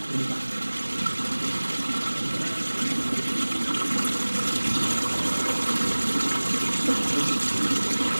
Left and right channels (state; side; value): inverted; both; correlation -1.00